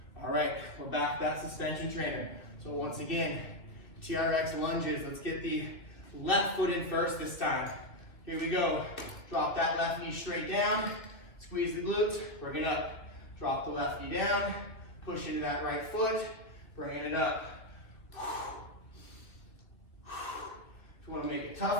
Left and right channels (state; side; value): late; right; 2.4 ms